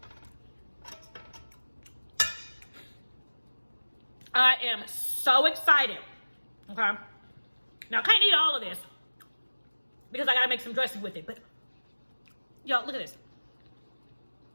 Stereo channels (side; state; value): both; inverted; correlation -1.00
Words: I am so excited. Okay. Now, I can't eat all of this because I got to make some dressing with it. But, y'all, look at this.